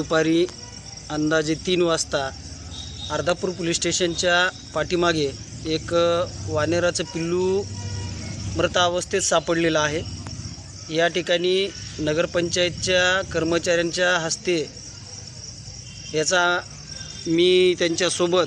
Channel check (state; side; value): identical; both; correlation 1.00